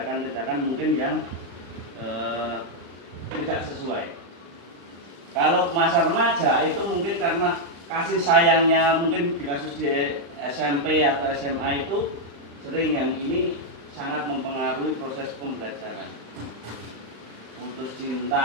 mungkin yang tidak sesuai. Kalau masa remaja itu mungkin karena kasih sayangnya, mungkin di kasus di SMP atau SMA itu sering yang ini sangat mempengaruhi proses pembelajaran. Putus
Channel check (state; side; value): late; left; 35 ms